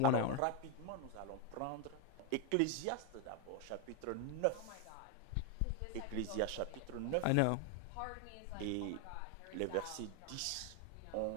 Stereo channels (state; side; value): different; both; correlation 0.01